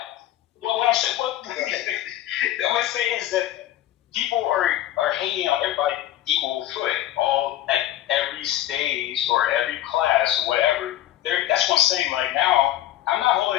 Well, what I'm saying, what I'm saying is that people are hating on everybody equal foot, all at every stage or every class or whatever. That's what I'm saying. Like now, I'm not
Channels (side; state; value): right; quieter; 13.5 dB